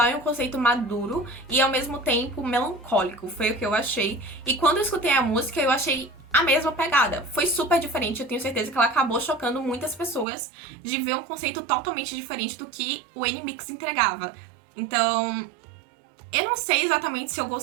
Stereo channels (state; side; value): drops out; left; at 10.2 s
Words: e um conceito maduro e ao mesmo tempo melancólico, foi o que eu achei. E quando eu escutei a música, eu achei a mesma pegada. Foi super diferente, eu tenho certeza que ela acabou chocando muitas pessoas de ver um conceito totalmente diferente do que o NMIXX entregava. Então, eu não sei exatamente se eu